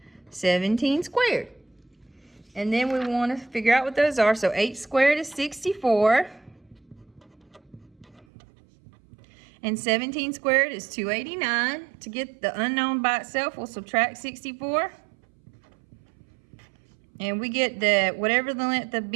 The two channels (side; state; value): left; drops out; at 8.2 s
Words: 17 squared. And then we want to figure out what those are. So 8 squared is 64. And 17 squared is 289. To get the unknown by itself, we'll subtract 64. And we get the, whatever the length of